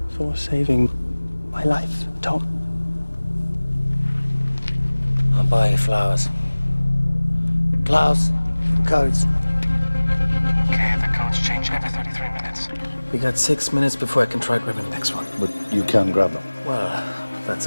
for saving my life, Tom. I'll buy you flowers. Klaus, codes. Okay, the codes change every 33 minutes. We got 6 minutes before I can try grabbing the next one. But you can grab them. Well, that's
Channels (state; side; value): inverted; both; correlation -1.00